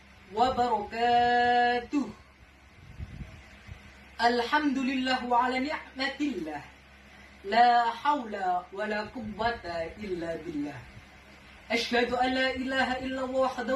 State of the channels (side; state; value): both; identical; correlation 1.00